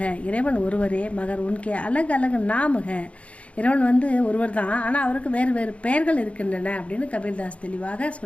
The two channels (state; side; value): late; right; 0.063 ms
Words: இறைவன் ஒருவரே. மகர் உன்கே அலகு அலகு நாமுக, இறைவன் ஒருவர் தான், ஆனால் அவருக்கு வேறு வேறு பெயர்கள் இருக்கின்றன அப்படின்னு கபீர்தாஸ் தெளிவாக